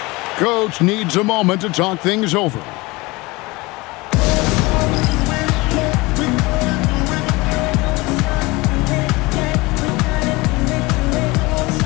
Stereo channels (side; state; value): right; quieter; 23.2 dB